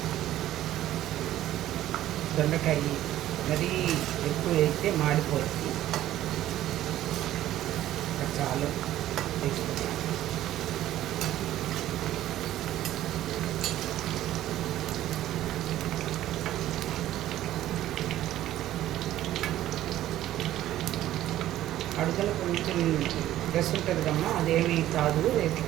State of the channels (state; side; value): quieter; left; 13.5 dB